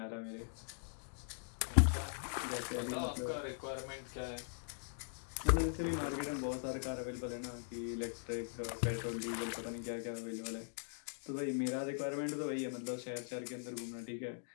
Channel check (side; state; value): right; silent; digital silence